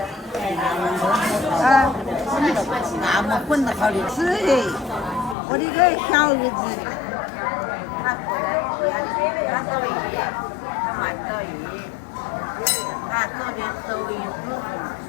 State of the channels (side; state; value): right; drops out; at 5.4 s